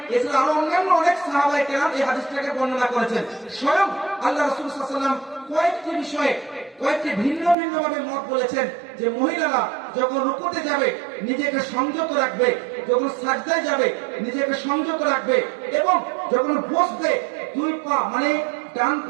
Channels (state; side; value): drops out; left; at 7.6 s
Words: এছাড়া আরো অন্যান্য অনেক সাহাবায়ে কেরাম এই হাদিসটাকে বর্ণনা করেছেন। স্বয়ং আল্লাহ রাসূল সাল্লাল্লাহু আলাইহি ওয়াসাল্লাম কয়েকটি বিষয়ে কয়েকটি ভিন্ন ভিন্ন ভাবে মত বলেছেন, যে মহিলারা যখন রুকুতে যাবে নিজেকে সংযত রাখবে, যখন সাজদায় যাবে নিজেকে সংযত রাখবে, এবং যখন বসবে দুই পা মানে ডান